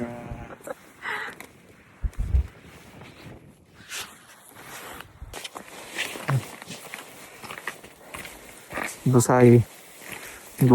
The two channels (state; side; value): identical; both; correlation 1.00